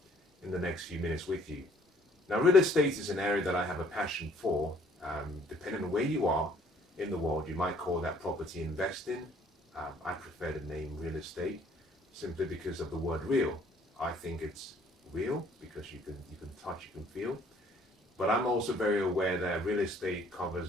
in the next few minutes with you. Now, real estate is an area that I have a passion for. Depending on where you are in the world, you might call that property investing. I prefer the name real estate simply because of the word real. I think it's real because you can touch, you can feel. But I'm also very aware that real estate covers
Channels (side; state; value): both; normal; correlation 0.60